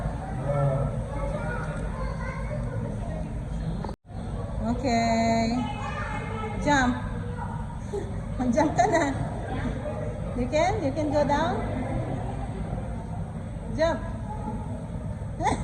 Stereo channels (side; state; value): both; identical; correlation 1.00